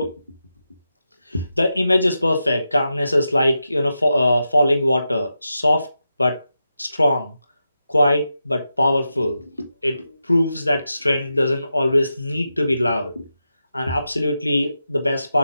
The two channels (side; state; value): both; inverted; correlation -0.89